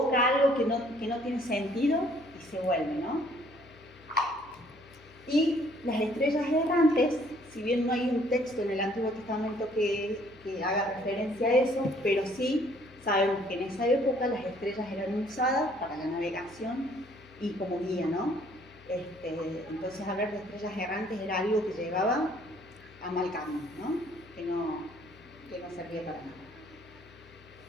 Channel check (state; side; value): noise; left; hum, 25 dB below the sound